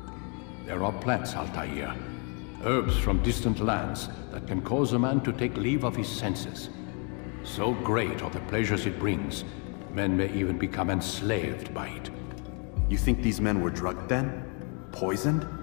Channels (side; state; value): right; quieter; 37.0 dB